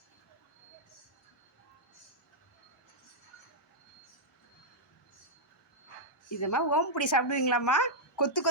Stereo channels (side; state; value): both; normal; correlation -0.07